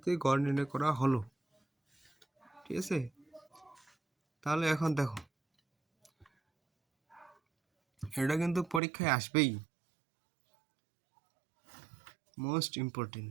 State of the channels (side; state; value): left; drops out; at 8.8 s